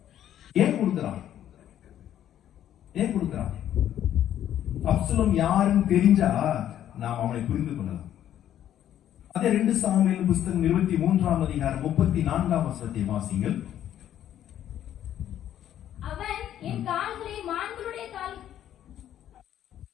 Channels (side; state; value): right; quieter; 11.1 dB